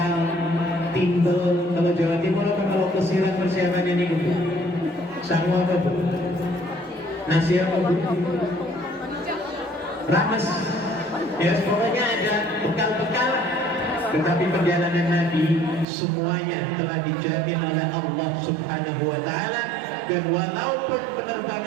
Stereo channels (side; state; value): left; drops out; at 15.9 s